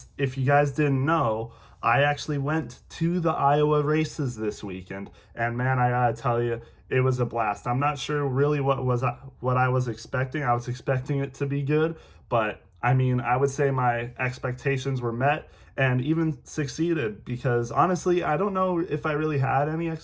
if you guys didn't know, I actually went to the Iowa races this weekend, and man, I gotta tell you, it was a blast. I'm not sure really what I was expecting. I was expecting it to be good, but I mean, I would say my expectations were met and even succeeded because honestly, I don't know if I really had any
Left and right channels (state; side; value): identical; both; correlation 1.00